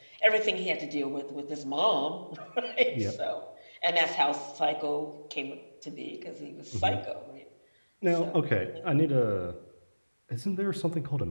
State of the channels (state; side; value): inverted; both; correlation -1.00